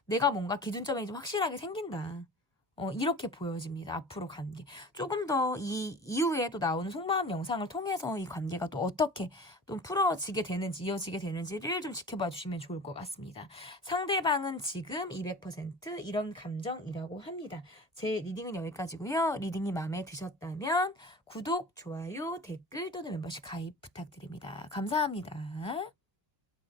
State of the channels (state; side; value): normal; both; correlation 0.39